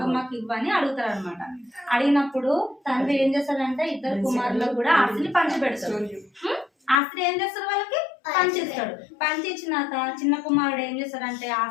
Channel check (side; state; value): right; drops out; at 7.0 s